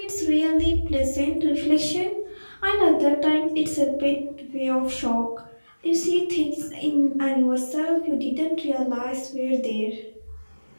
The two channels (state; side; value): inverted; both; correlation -1.00